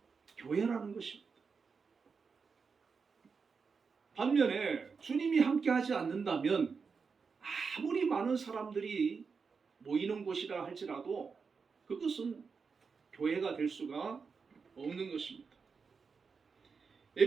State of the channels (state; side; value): quieter; left; 5.3 dB